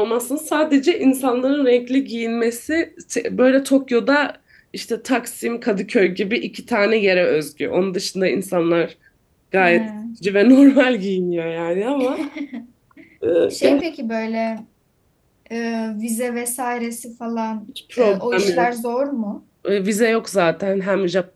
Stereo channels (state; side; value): identical; both; correlation 1.00